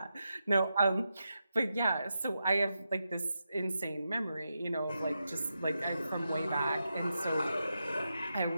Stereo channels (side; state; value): both; inverted; correlation -0.87